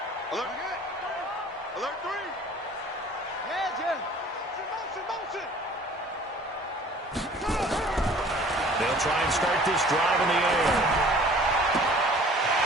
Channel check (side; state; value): both; normal; correlation 0.50